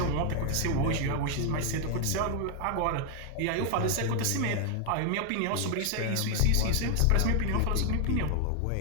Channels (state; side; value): different; both; correlation 0.00